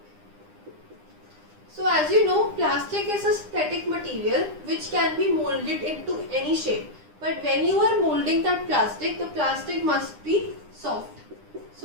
So as you know, plastic is a synthetic material which can be molded into any shape. But when you are molding that plastic, the plastic must be soft.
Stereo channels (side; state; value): left; late; 9.9 ms